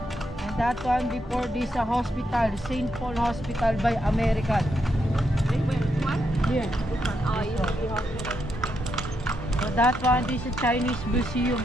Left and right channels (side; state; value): both; normal; correlation 0.81